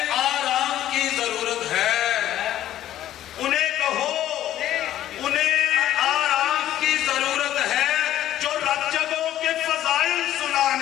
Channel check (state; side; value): quieter; right; 12.6 dB